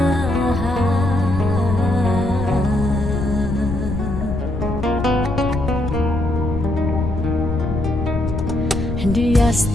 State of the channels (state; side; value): noise; left; rumble, 4 dB below the sound